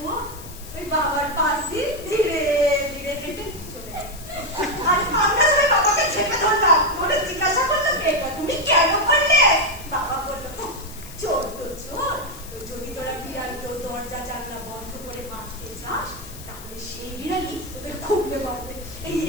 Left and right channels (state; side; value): noise; left; hiss, 16 dB below the sound